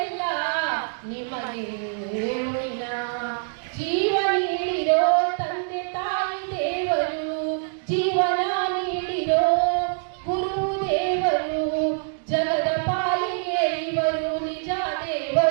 ನಿಮಗೆ ಋಣಿನ ಜೀವ ನೀಡಿರೋ ತಂದೆ ತಾಯಿ ದೇವರು ಜೀವನ ನೀಡಿರೋ ಗುರು ದೇವರು ಜಗದ ಪಾಲಿಗೆ ಇವರು ನಿಜ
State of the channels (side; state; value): left; silent; digital silence